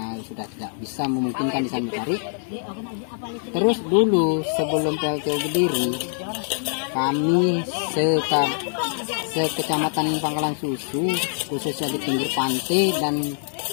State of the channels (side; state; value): right; silent; 63 dB below the other